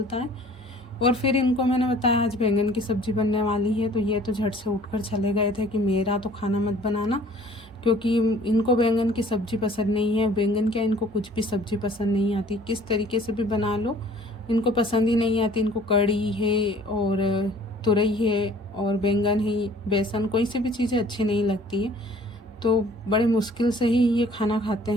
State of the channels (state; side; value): normal; both; correlation 0.53